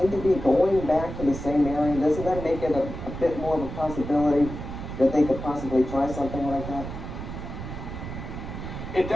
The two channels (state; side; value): noise; right; rumble, 8 dB below the sound